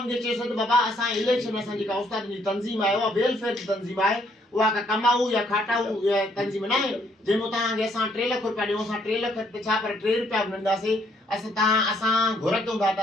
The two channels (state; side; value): normal; both; correlation 0.68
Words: चयोसीं त बाबा असां इलेक्शन असां जेका उस्तादनि जी तंज़ीम आहे उहा वेलफेयर जी तंज़ीम आहे, उहा का कमाऊ या खाटाऊ तंज़ीम न आहे जंहिंमें तव्हांखे असां 3 लाख रुपया ॾियूं। असां 3 लाख ते छा पर 3 रुपया बि न ॾींदासीं। असां घुर कयूं था त